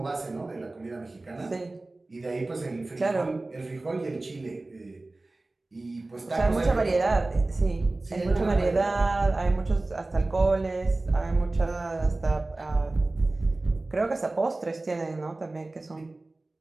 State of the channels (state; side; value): quieter; left; 3.0 dB